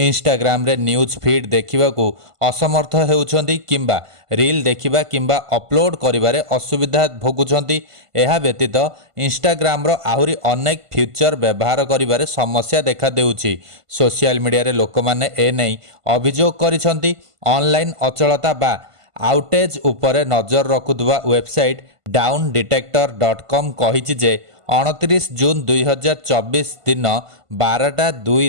रे न्यूज फीड देखिबाकू असमर्थ हेउछन्ति किंबा रील देखिबा किंबा अपलोड करिबारे असुविधा भोगुछन्ति। एहा व्यतीत इंस्टाग्राम रो आहुरी अनेक फीचर व्यवहार करिबारे समस्या देखा देउछि। सोशल मीडिया रे लोकमाने ए नै अभियोग करिसन्ति। ऑनलाइन अचलता बा आउटेज उपरे नजर रखुवा वेबसाइट डाउनडिटेक्टर.com कहिछि जे 29 जून 2024 दिन 12:02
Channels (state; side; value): late; left; 1.5 ms